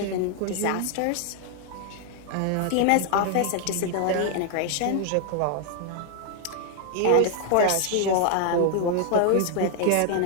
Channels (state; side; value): different; both; correlation 0.00